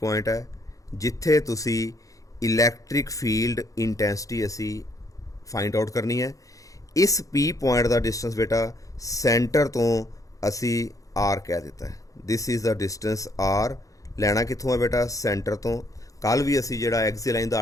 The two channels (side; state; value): right; late; 0.16 ms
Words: पॉइंट है जिथे तुसी इलैक्ट्रिक फील्ड इंटेंसिटी असी फाइंड आउट करनी है। इस P पॉइंट का डिस्टेंस बेटा सेंटर तो असी R कह दिता है। This is the distance R। लैना कित्थों है बेटा सेंटर तो। कल भी असी जिहड़ा एक्सियल लाइन का